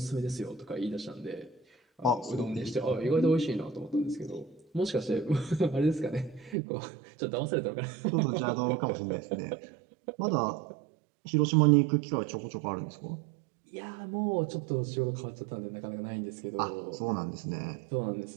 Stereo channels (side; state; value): left; drops out; at 6.6 s